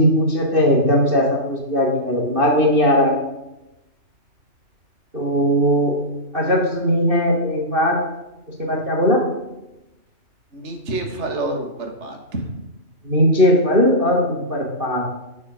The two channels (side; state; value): left; late; 2.6 ms